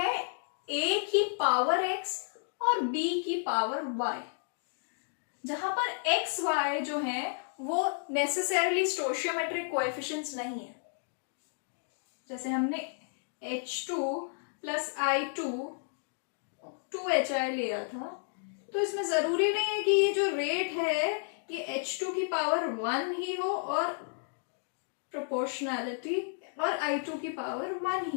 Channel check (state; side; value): silent; right; digital silence